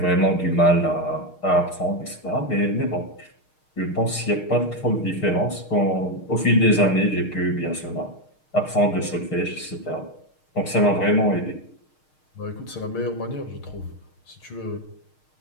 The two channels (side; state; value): right; late; 6.5 ms